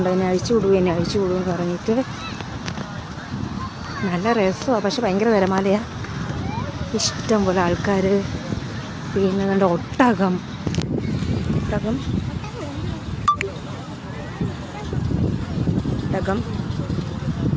എന്നെ അഴിച്ചു വിടുമെന്ന് പറഞ്ഞിട്ട്. നല്ല രസമാണ്, പക്ഷെ ഭയങ്കര തിരമാലയാണ്. ഇഷ്ടം പോലെ ആൾക്കാർ. പിന്നെ നല്ല ഒട്ടകം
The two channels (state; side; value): identical; both; correlation 1.00